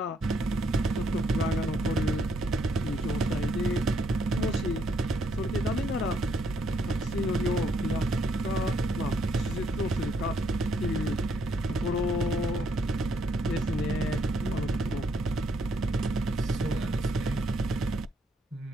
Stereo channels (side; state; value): both; normal; correlation 0.71